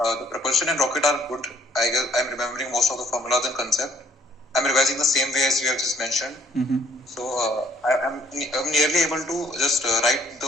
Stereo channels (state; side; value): normal; both; correlation 0.62